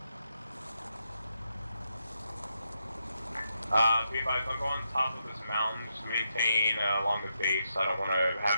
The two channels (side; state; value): both; inverted; correlation -0.82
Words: Be advised, I'll go on top of this mountain, just maintain along the base. I don't want to